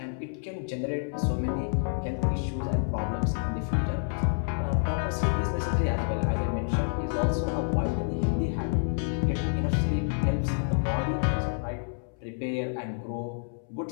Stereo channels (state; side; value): silent; right; 59 dB below the other